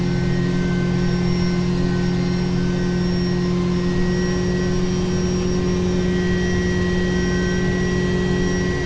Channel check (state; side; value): identical; both; correlation 1.00